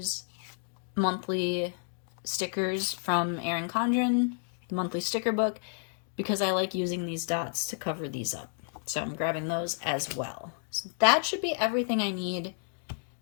monthly stickers from Erin Condren, the monthly sticker book, because I like using these dots to cover these up. So I'm grabbing those as well. So that should be everything I need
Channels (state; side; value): silent; right; 57 dB below the other